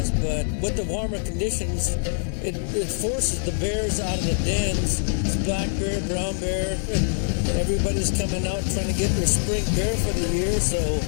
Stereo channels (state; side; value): silent; right; digital silence